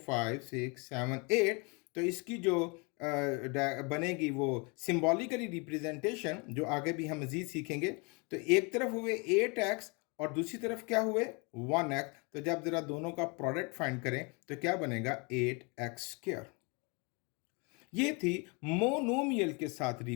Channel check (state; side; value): quieter; right; 31.2 dB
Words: 5 6 7 8। तो इसकी जो बनेगी वो सिंबॉलिकली रिप्रेजेंटेशन, जो आगे भी हम मजीद सीखेंगे। तो एक तरफ हुए 8x और दूसरी तरफ क्या हुए 1x। तो जब जरा दोनों का प्रोडक्ट फाइंड करें तो क्या बनेगा 8x²। ये थी मोनोमियल के साथ